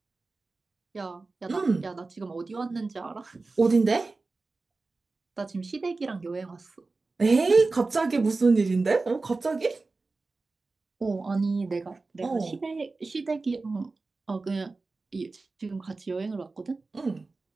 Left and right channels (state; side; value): quieter; left; 3.7 dB